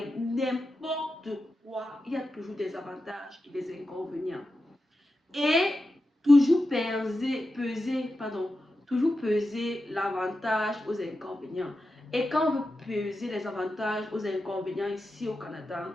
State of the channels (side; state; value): both; normal; correlation 0.90